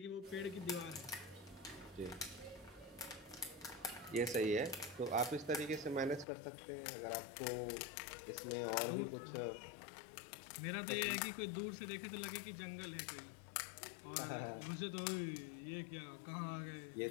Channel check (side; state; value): right; drops out; at 6.2 s